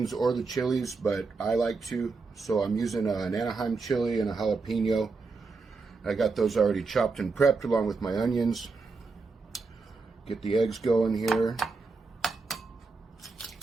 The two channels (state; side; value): quieter; left; 4.2 dB